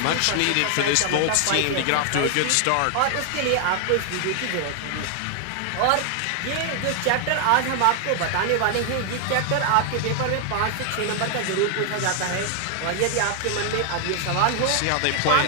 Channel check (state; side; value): different; both; correlation 0.00